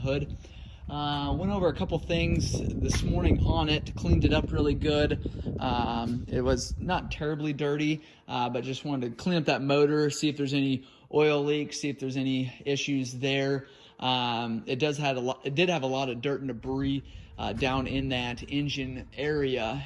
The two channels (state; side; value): identical; both; correlation 1.00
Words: Went over a couple things this morning on it, cleaned it up really good. It was not terribly dirty, but just wanted to clean up that motor, see if there's any oil leaks, see if there's any issues there. It did have a lot of dirt and debris down in that engine area,